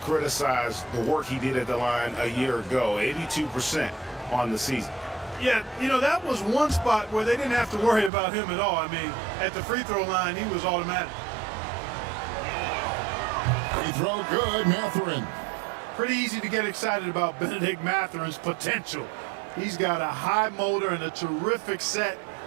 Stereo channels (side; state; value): left; drops out; at 8.1 s